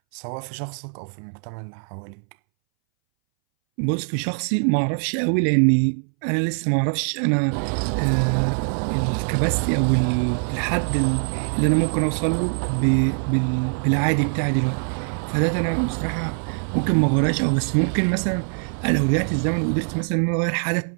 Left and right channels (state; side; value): silent; left; 62 dB below the other